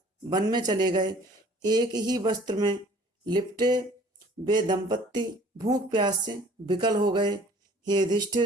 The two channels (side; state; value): both; normal; correlation 0.52